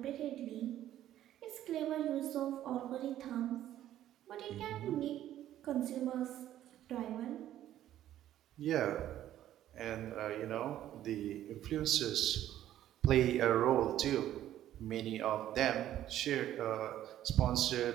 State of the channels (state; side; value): quieter; left; 12.4 dB